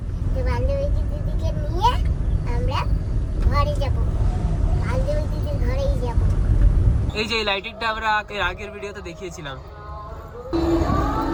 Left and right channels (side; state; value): both; identical; correlation 1.00